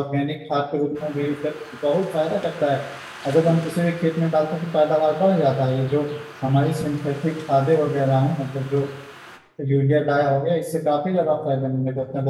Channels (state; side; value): identical; both; correlation 1.00